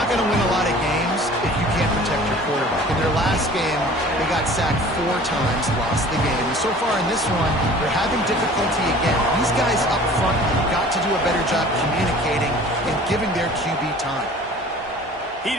going to win a lot of games if you can't protect your quarterback. In their last game, they got sacked 4 times, lost the game. And so far in this one, they're having difficulty again. These guys up front have got to do a better job communicating and giving their QB time. He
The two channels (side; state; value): both; normal; correlation 0.46